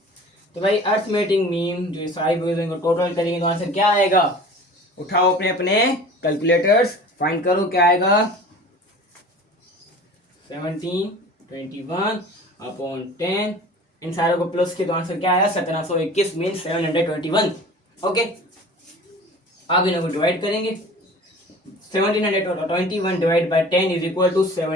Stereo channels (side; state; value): both; normal; correlation 0.42